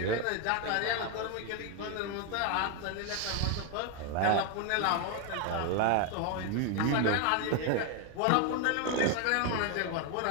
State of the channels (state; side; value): different; both; correlation 0.01